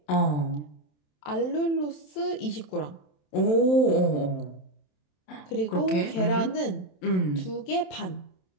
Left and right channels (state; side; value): late; right; 27 ms